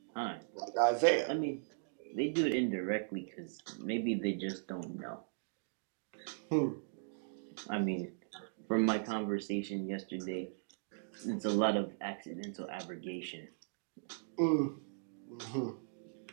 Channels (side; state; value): left; silent; digital silence